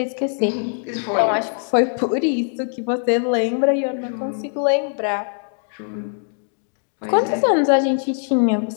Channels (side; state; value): right; silent; 65 dB below the other